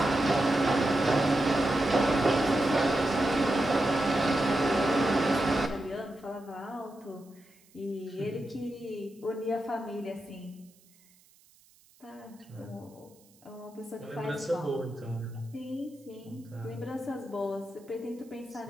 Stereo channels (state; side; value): noise; right; hiss, 29 dB below the sound